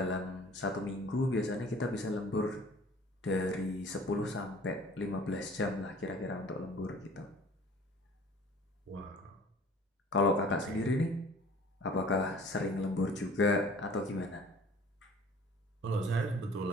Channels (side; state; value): both; normal; correlation 0.48